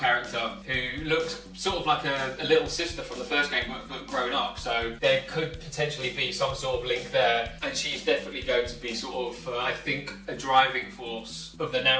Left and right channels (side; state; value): both; identical; correlation 1.00